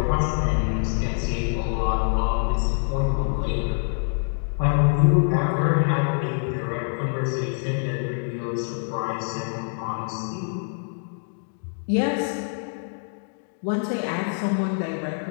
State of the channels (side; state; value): right; silent; digital silence